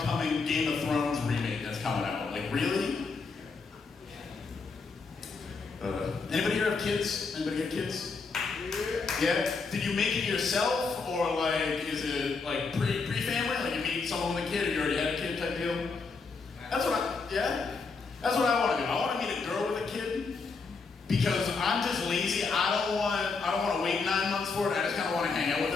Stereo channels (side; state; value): right; quieter; 4.5 dB